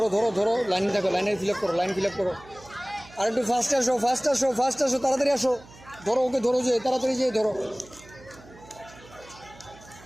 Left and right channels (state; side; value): noise; right; hum, 22 dB below the sound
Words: ধরো ধরো, লাইনে থাকো, লাইনে ফিল আপ করো, লাইন ফিল আপ করো। আর একটু ফাস্ট আসো, ফাস্ট আসো, ফাস্ট আসো, তাড়াতাড়ি আসো। ধরো ওকে, ধরো, যে তাড়াতাড়ি যেয়ে ধরো।